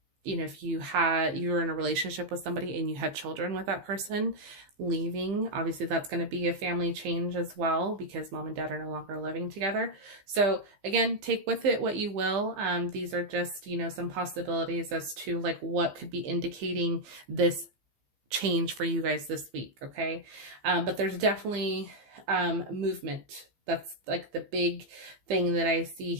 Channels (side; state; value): left; late; 15 ms